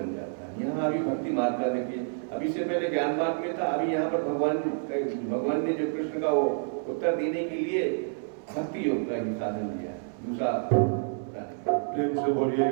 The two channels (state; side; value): silent; left; 59 dB below the other